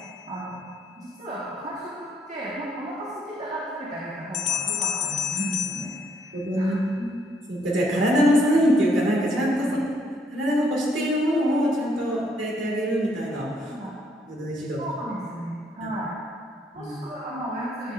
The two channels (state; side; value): normal; both; correlation 0.70